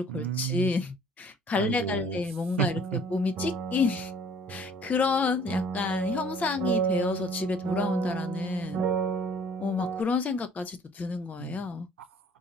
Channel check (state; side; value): normal; both; correlation 0.55